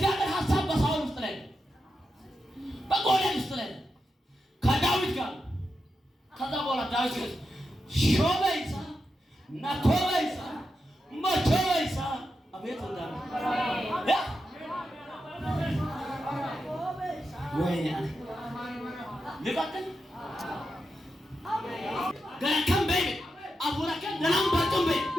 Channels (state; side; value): normal; both; correlation 0.87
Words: ሐሳብ በሳውል ውስጥ ላይ ነው፣ በጎልያድ ውስጥ ላይ ነው፣ ከዳዊት ጋር። ከዛ በኋላ ዳዊት ሾበይሳ ናኮበይሳ መቾበይሳ አቤት እንዳለ ወይኔ ልቀጥል ገረከም በይ አቡራከም ደናም ባጥም በይ